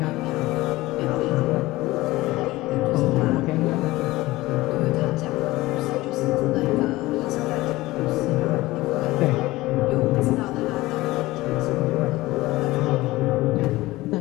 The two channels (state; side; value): quieter; right; 18.8 dB